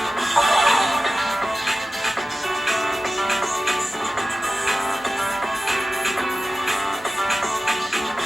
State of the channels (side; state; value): both; normal; correlation 0.95